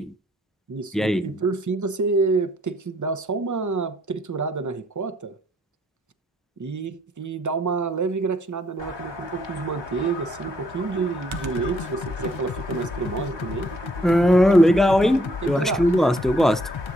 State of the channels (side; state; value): both; normal; correlation 0.68